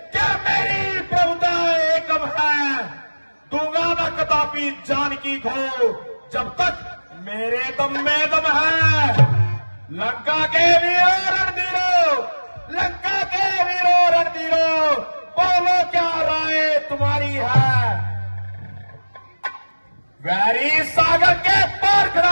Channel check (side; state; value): both; inverted; correlation -1.00